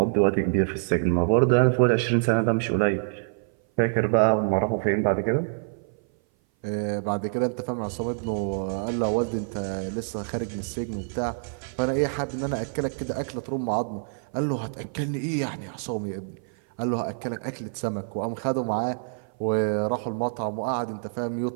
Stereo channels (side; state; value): left; silent; 57 dB below the other